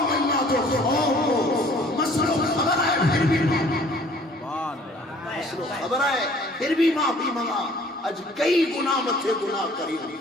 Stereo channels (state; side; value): normal; both; correlation 0.54